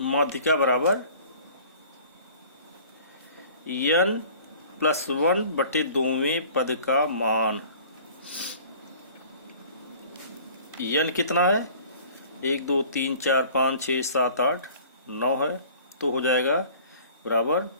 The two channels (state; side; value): inverted; both; correlation -0.48